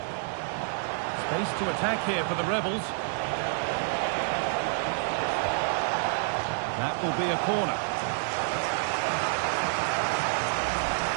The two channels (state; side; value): silent; left; digital silence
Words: Space to attack here for the Rebels. That will be a corner.